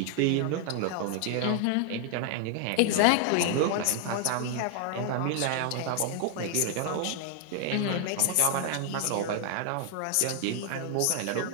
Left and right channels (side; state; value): both; different; correlation 0.00